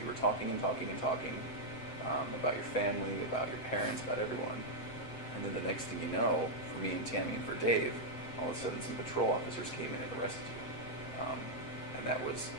were talking and talking and talking about your family, about your parents, about everyone. And then the next thing you know, for me and Tammy and for Dave, all of a sudden some patrol officers came in and arrested you. And that was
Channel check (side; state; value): right; late; 7.7 ms